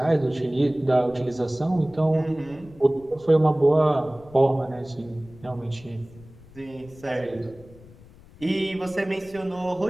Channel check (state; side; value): noise; left; rumble, 22 dB below the sound